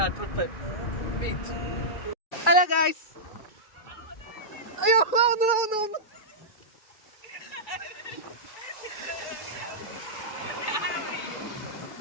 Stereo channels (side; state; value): right; late; 1.9 ms